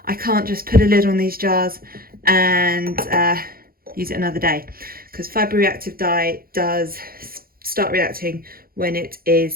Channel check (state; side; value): late; left; 0.43 ms